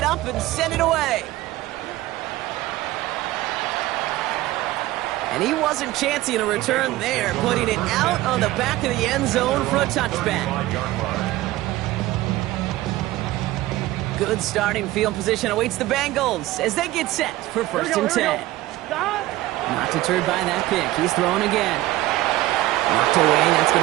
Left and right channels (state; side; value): quieter; left; 16.8 dB